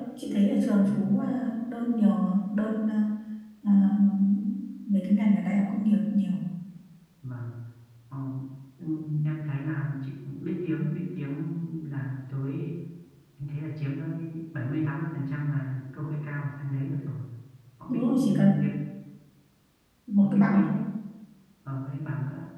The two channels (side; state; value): both; identical; correlation 1.00